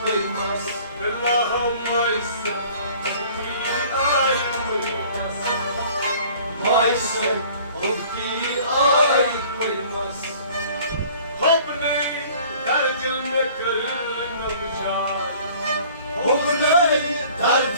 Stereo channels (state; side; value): inverted; both; correlation -0.50